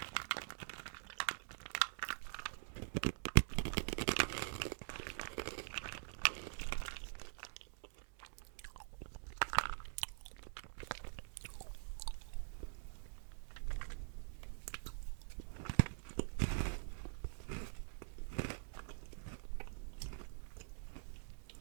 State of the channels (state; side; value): silent; left; digital silence